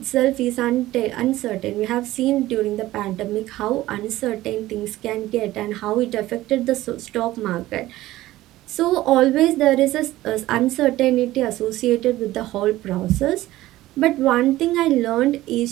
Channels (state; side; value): quieter; left; 16.2 dB